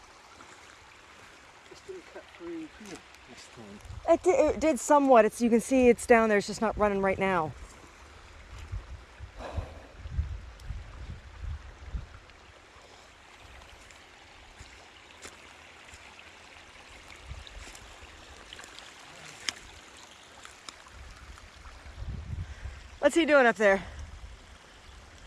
Didn't cut through this time. It did somewhat. You can see it's down there. It's just not running right now. What's he doing up there?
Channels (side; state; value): both; identical; correlation 1.00